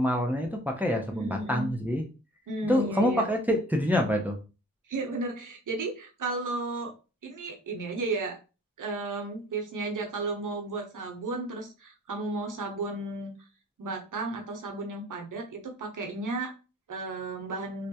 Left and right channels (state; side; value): normal; both; correlation 0.50